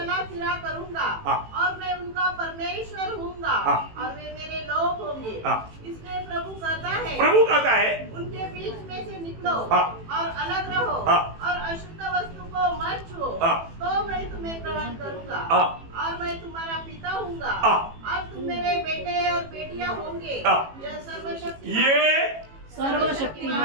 फिरा करूंगा हाँ। और मैं उनका परमेश्वर हूँगा हाँ। और वे मेरे लोग होंगे। हाँ। इसलिए प्रभु कहता है, प्रभु कहता है, उनके बीच में से निकलो हाँ। और अलग रहो हाँ। और अशुद्ध वस्तु को मत छुओ, हाँ। तो मैं तुम्हें ग्रहण करूंगा हाँ। और मैं तुम्हारा पिता हूँगा हाँ। और तुम मेरे बेटे और बेटियां होंगे। हाँ। यह सर्वशक्ति ये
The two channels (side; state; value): left; late; 18 ms